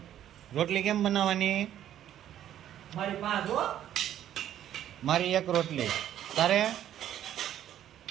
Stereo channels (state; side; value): quieter; left; 11.2 dB